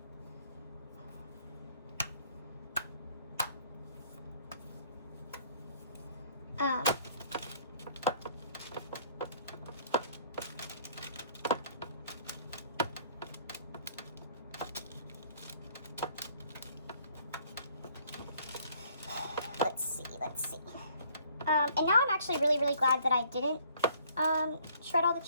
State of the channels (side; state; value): both; inverted; correlation -0.60